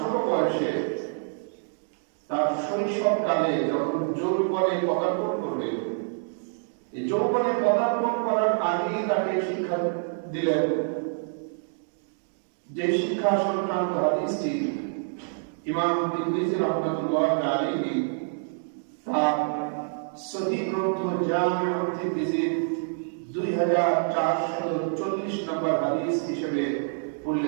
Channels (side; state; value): left; silent; digital silence